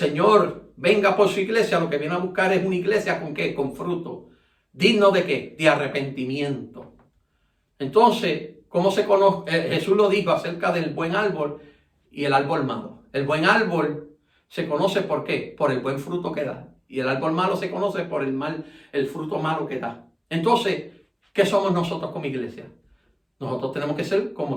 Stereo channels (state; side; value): identical; both; correlation 1.00